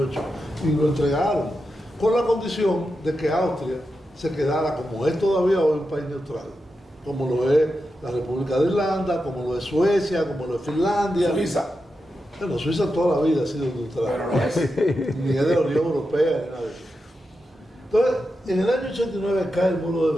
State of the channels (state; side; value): normal; both; correlation 0.89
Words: y lo entregaron, con la condición de que Austria se quedara, como es todavía hoy, un país neutral, como lo es la República de Irlanda, como lo es Suecia, como lo es Finlandia. Suiza. Bueno, Suiza toda la vida ha sido neutral. Pero no es. Ni es de la Unión Europea, ni nada de eso. Entonces, en el año 89 cae el muro de